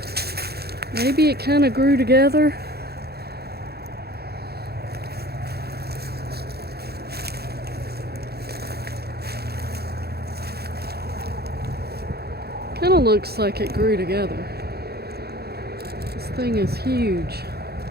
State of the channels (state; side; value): late; left; 0.46 ms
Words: Maybe it kind of grew together. Kind of looks like it grew together. This thing is huge.